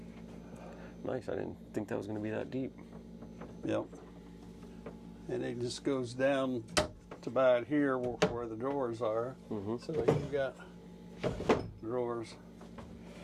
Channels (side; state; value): both; identical; correlation 1.00